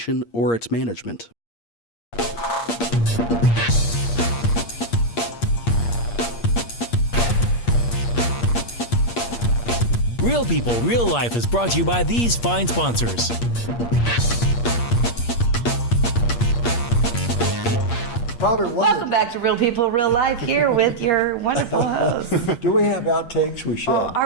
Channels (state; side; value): late; right; 8.5 ms